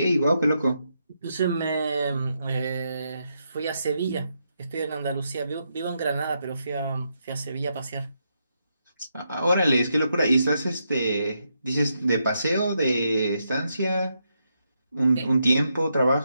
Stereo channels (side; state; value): both; inverted; correlation -0.81